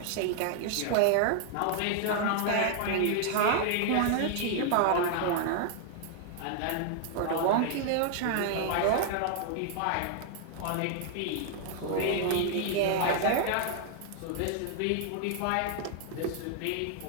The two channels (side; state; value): both; different; correlation 0.00